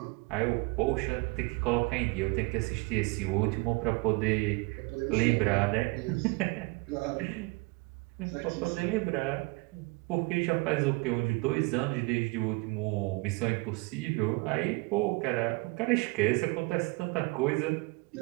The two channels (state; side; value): quieter; left; 26.2 dB